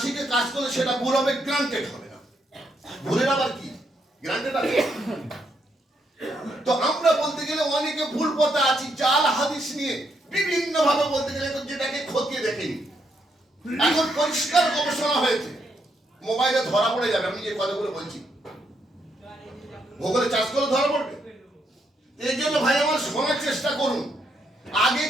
শিখে কাজ করলে সেটা ভুল হবে, গ্রান্টেড হবে না। ভুলের আবার কি গ্রান্টেড আছে? তো আমরা বলতে গেলে অনেকে ভুল পথে আছি, জাল হাদিস নিয়ে বিভিন্ন ভাবে বলতে গেলে যেটাকে খতিয়ে দেখেনি। এখন পরিষ্কার গবেষণা হয়েছে, মোবাইলে ধরা পড়ে যাবে। আমি যে কথাগুলো বলছি ভূগোলে চাষ করে ধরা পড়বে। এই জন্য ভাই আমার শোনার চেষ্টা করুন, আগে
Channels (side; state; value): both; normal; correlation 0.77